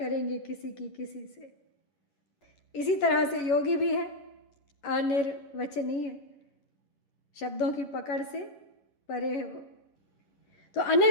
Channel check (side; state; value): right; late; 11 ms